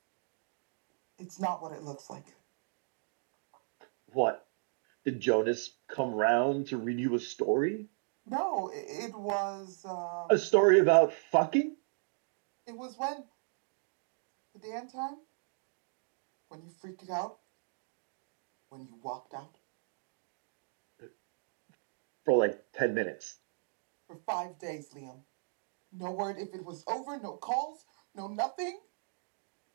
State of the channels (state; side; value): silent; left; digital silence